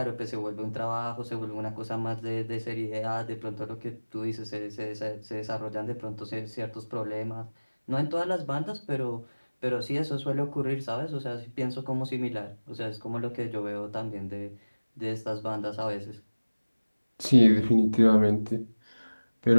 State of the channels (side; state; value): both; inverted; correlation -1.00